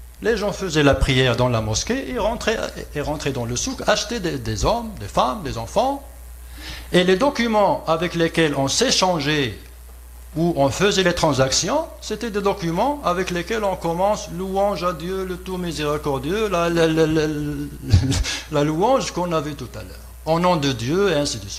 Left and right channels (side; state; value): both; identical; correlation 1.00